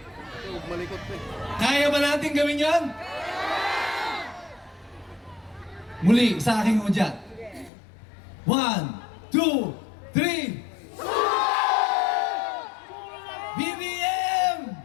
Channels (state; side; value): drops out; right; at 7.7 s